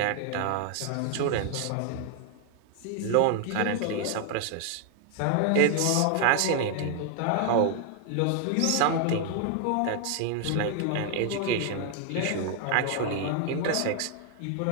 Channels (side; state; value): both; different; correlation 0.00